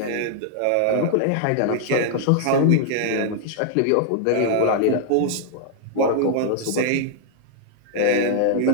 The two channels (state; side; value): different; both; correlation 0.00